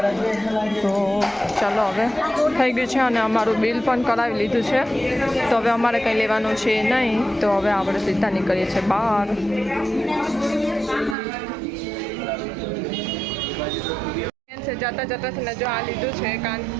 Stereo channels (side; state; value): left; drops out; at 11.2 s